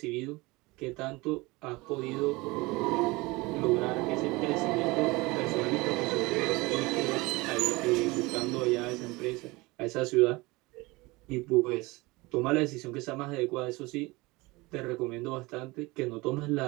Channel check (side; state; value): left; quieter; 23.0 dB